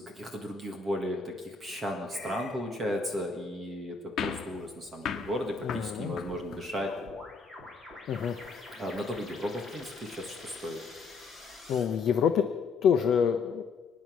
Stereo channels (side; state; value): right; quieter; 4.6 dB